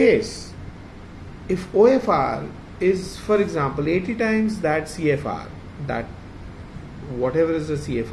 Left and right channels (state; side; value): identical; both; correlation 1.00